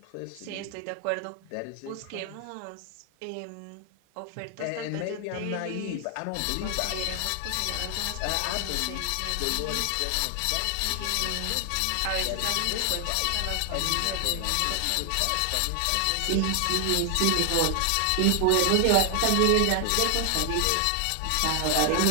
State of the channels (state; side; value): different; both; correlation 0.00